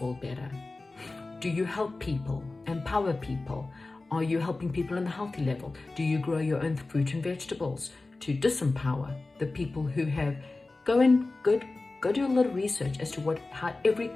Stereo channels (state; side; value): quieter; right; 3.3 dB